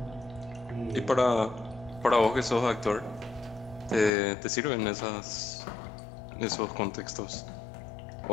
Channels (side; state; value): right; drops out; at 4.1 s